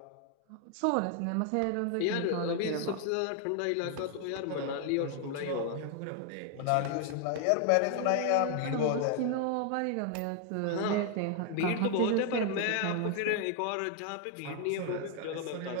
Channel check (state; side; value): different; both; correlation 0.00